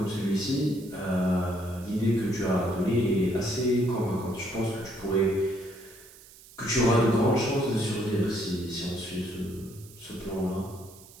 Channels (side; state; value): right; noise; hiss, 21 dB below the sound